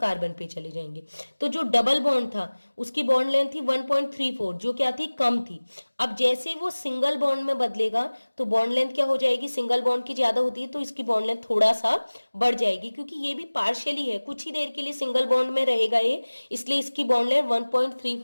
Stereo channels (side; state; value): both; inverted; correlation -1.00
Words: पे चले जाएंगे। तो जो डबल बॉन्ड था उसकी बॉन्ड लेंथ थी 1.34, जो क्या थी, कम थी। अब जैसे वो सिंगल बॉन्ड में बदलेगा तो बॉन्ड लेंथ क्या हो जाएगी, सिंगल बॉन्ड की ज्यादा होती है तो इसकी बॉन्ड लेंथ थोड़ा सा बढ़ जाएगी, क्योंकि ये भी पार्शियली है, कुछ ही देर के लिए सिंगल बॉन्ड में रहेगा ये, इसलिए इसकी बॉन्ड लेंथ